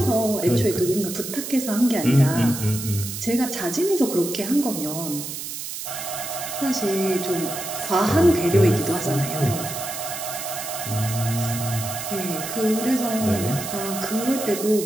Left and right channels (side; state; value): right; noise; hiss, 7 dB below the sound